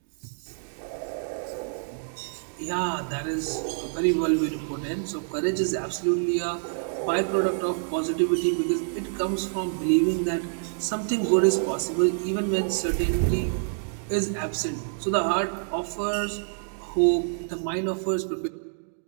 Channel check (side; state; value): left; silent; digital silence